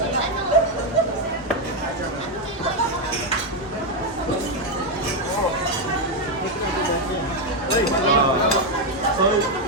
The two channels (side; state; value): both; normal; correlation 0.04